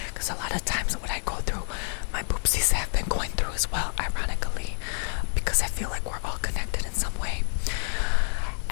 because a lot of times what I go through, my boopsies have been going through as well, ironically.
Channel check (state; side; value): silent; right; digital silence